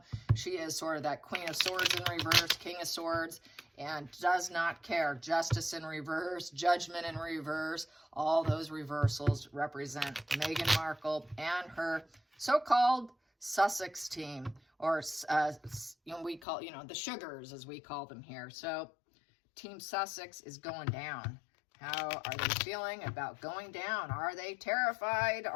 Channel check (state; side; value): drops out; right; at 16.4 s